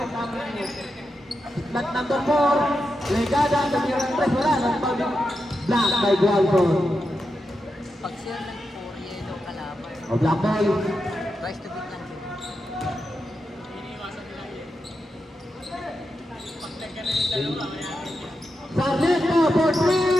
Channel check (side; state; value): both; normal; correlation 0.87